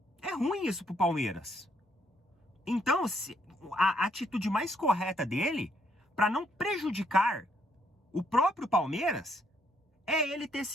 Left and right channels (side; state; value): both; normal; correlation 0.72